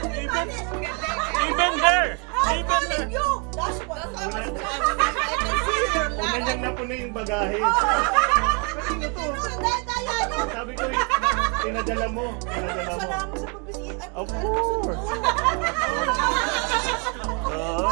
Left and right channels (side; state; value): left; quieter; 34.1 dB